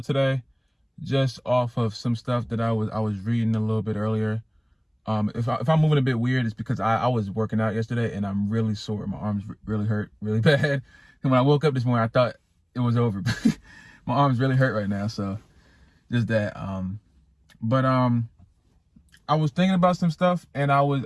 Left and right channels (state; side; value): identical; both; correlation 1.00